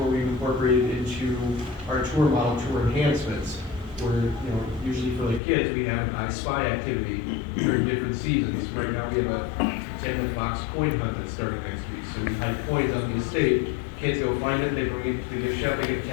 we've incorporated into our tour model, tour enhancements, where, usually for the kids, we have an I Spy activity during different seasons. Right now, we have a Pretend the Fox coin hunt that's starting next week. So we hide coins on the estate, kids go find it, they bring it to the gift shop, they get a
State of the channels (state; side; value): drops out; right; at 5.4 s